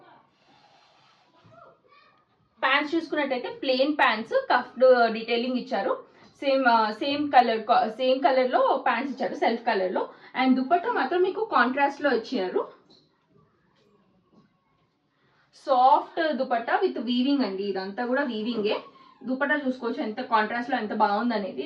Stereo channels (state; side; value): identical; both; correlation 1.00